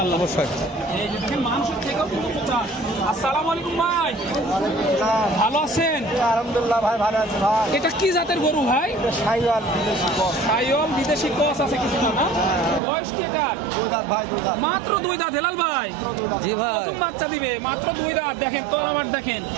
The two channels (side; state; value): left; drops out; at 12.8 s